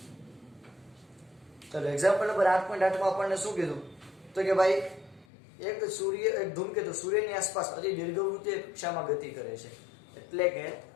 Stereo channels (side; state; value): right; drops out; at 5.2 s